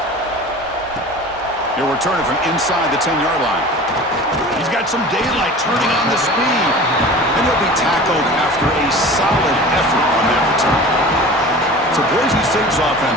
He'll return it from inside the 10-yard line. He's got some daylight turning on the speed, and he'll be tackled after a solid effort on that return. So Boise State's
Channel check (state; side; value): normal; both; correlation 0.39